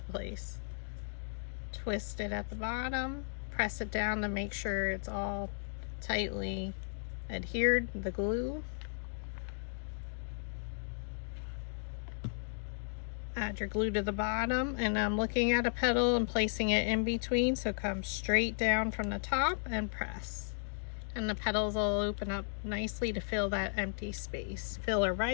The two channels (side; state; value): right; silent; digital silence